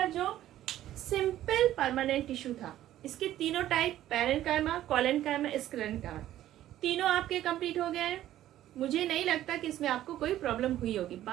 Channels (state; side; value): quieter; left; 13.1 dB